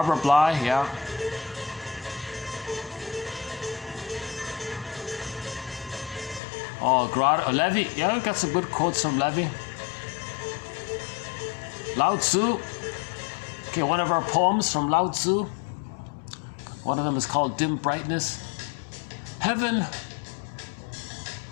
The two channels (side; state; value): right; drops out; at 6.4 s